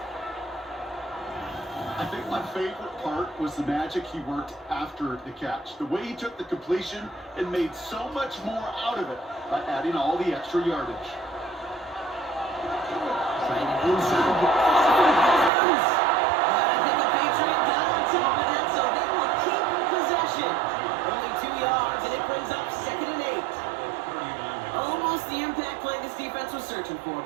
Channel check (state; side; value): drops out; left; at 15.5 s